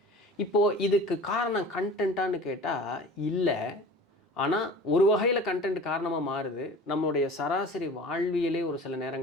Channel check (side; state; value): both; normal; correlation 0.41